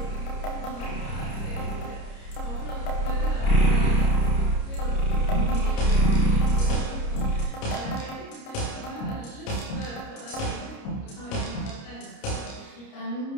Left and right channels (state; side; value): late; right; 29 ms